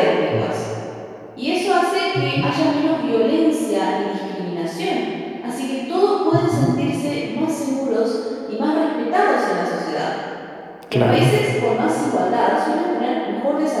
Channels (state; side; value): identical; both; correlation 1.00